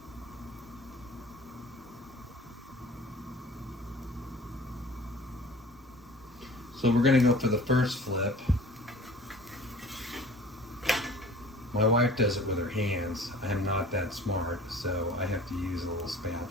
So we're gonna go for the first flip. My wife does it with her hands. I'm not that smart, so I have to use a little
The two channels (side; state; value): both; normal; correlation 0.45